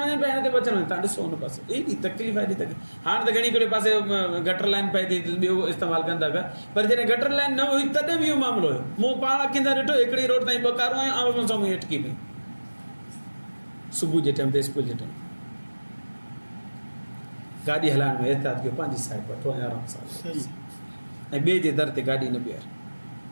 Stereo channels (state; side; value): inverted; both; correlation -1.00